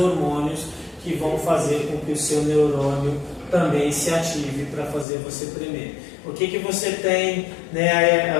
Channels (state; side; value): drops out; right; at 5.1 s